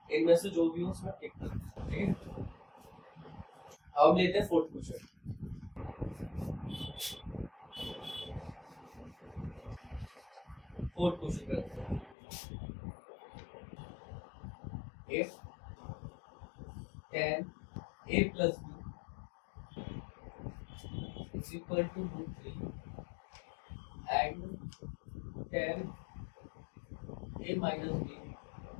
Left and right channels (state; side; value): drops out; right; at 12.2 s